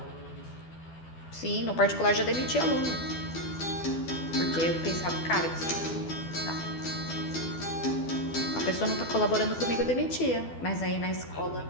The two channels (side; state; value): right; late; 12 ms